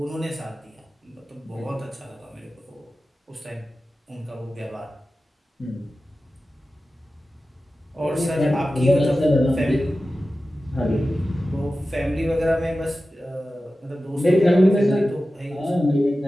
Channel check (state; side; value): normal; both; correlation 0.94